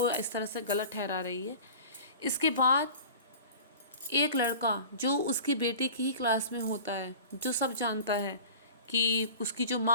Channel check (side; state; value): both; inverted; correlation -0.40